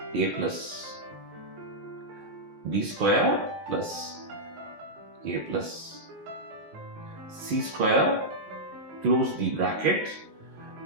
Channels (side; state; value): left; late; 19 ms